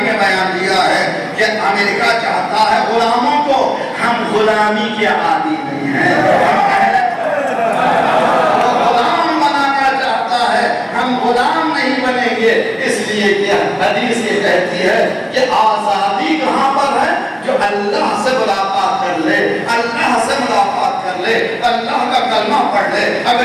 بیان دیا ہے کہ امریکہ چاہتا ہے غلاموں کو، ہم غلامی کے عادی نہیں ہیں، غلام بنانا چاہتا ہے، ہم غلام نہیں بنیں گے۔ اس لیے کہ حدیث یہ کہتی ہے کہ آزادی کہاں پر ہے؟ جو اللہ سے ملاقات کر لے، اللہ سے ملاقات کر لے، اللہ کا کلمہ پڑھ لے،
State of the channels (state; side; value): identical; both; correlation 1.00